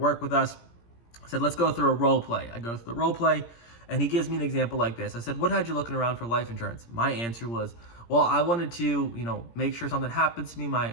with us. I said, let's go through a role play. I go through the role play, and he gives me an example like this. I said, what had you looking around for life insurance? My answer was, well, I wanted to, make sure something happens to me.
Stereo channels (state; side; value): late; right; 17 ms